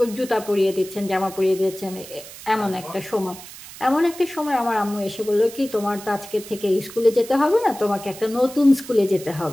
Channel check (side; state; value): right; noise; hiss, 15 dB below the sound